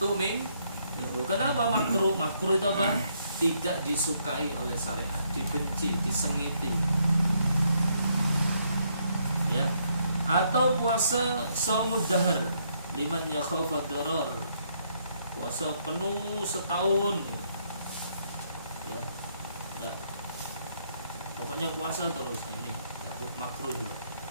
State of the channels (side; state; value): both; inverted; correlation -0.73